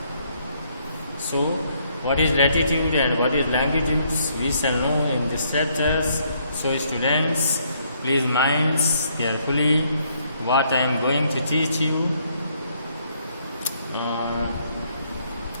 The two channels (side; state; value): both; inverted; correlation -0.70